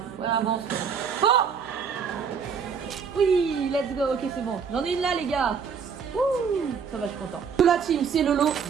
Ouais, avance. Oh! Oui, let's go, ok, c'est bon. J'en ai une là, les gars. Ouh, ça va, je suis content. La team, c'est Lolo.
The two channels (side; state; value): left; quieter; 6.5 dB